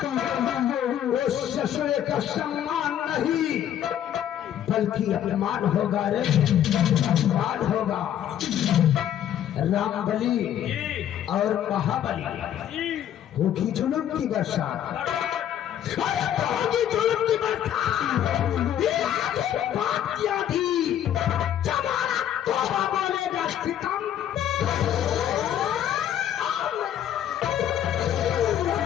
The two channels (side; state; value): right; quieter; 10.6 dB